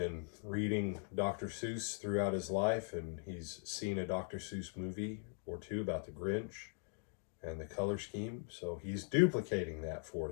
reading Dr. Seuss throughout his life, and he's seen a Dr. Seuss movie or two about the Grinch and the color scheme. So he's duplicating that for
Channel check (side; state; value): right; silent; 51 dB below the other